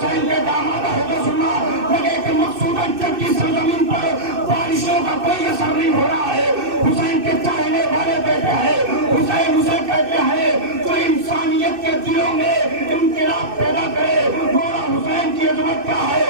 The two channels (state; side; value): late; left; 2.6 ms